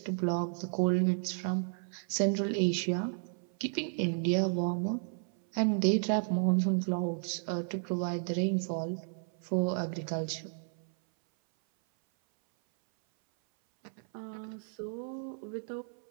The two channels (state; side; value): silent; left; 56 dB below the other